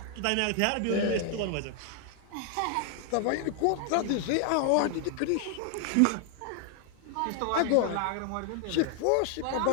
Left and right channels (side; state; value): both; different; correlation 0.00